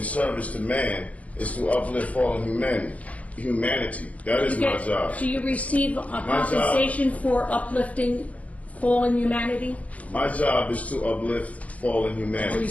to man is to uplift fallen humanity. That is my job. Do you receive a compensation for uplifting fallen humanity? My job is to uplift fallen humanity. Do you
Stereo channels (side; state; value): right; late; 0.068 ms